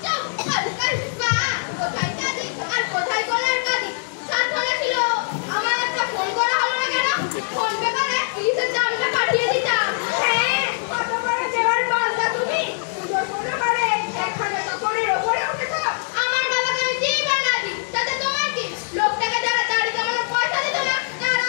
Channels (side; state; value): right; silent; 63 dB below the other